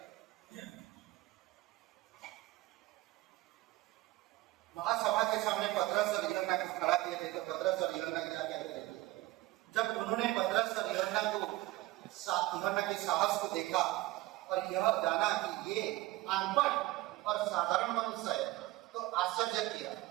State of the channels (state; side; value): quieter; left; 18.5 dB